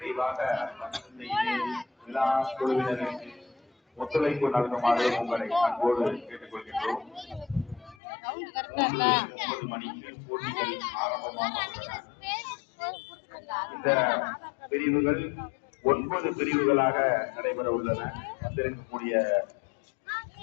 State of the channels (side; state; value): right; drops out; at 8.0 s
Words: விழா குழுவினருக்கு ஒத்துழைப்பு நல்குமாறு உங்களை அன்போடு கேட்டுக்கொள்கின்றோம். 9 மணிக்கு போட்டிகள் ஆரம்பமாக இந்த பிரிவுகள் 9 பிரிவுகளாக நடைபெற உள்ளன. வந்திருக்கக்கூடிய